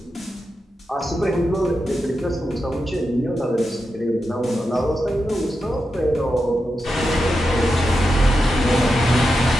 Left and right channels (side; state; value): both; normal; correlation 0.88